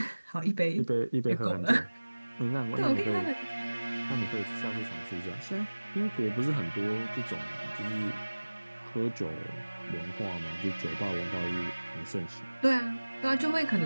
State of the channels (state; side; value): inverted; both; correlation -1.00